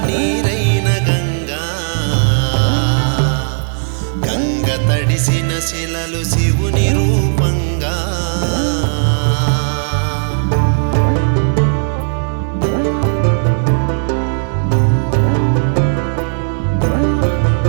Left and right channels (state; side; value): silent; left; digital silence